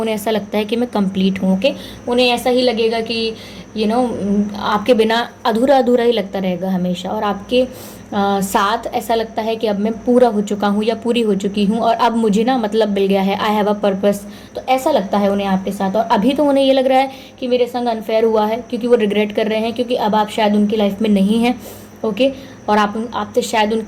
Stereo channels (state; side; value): identical; both; correlation 1.00